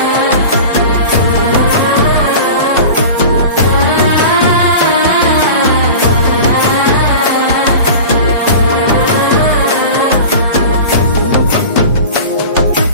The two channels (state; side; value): inverted; both; correlation -0.35